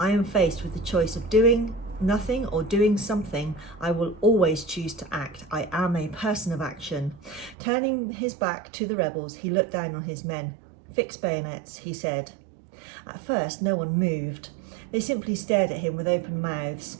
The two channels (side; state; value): left; drops out; at 7.6 s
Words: am faced with the choice of doing nothing or doing something, I will always choose to act. I am a person of action." Turning his back to the rebels, he looked down on his men. "Fix bayonets," he said. At first, no one moved. They simply stared at him with open mouths.